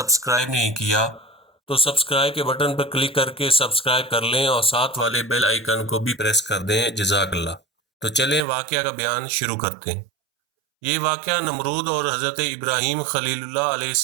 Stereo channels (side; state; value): left; drops out; at 8.5 s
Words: نہیں کیا تو سبسکرائب کے بٹن پر کلک کر کے سبسکرائب کر لیں اور ساتھ والے بیل آئیکن کو بھی پریس کر دیں۔ جزاک اللہ۔ تو چلیں واقعہ کا بیان شروع کرتے ہیں۔ یہ واقعہ نمرود اور حضرت ابراہیم خلیل اللہ علیہ